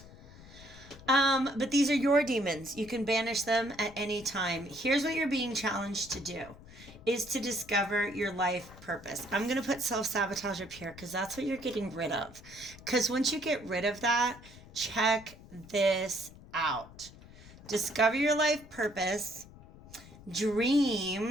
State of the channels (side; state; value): left; noise; rumble, 19 dB below the sound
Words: But these are your demons. You can banish them at any time. Here's what you're being challenged to do, is to discover your life purpose. I'm going to put self-sabotage up here because that's what you're getting rid of. Because once you get rid of that, check this out. Discover your life purpose,